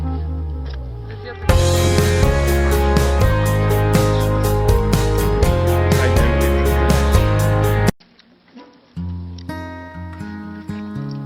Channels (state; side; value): identical; both; correlation 1.00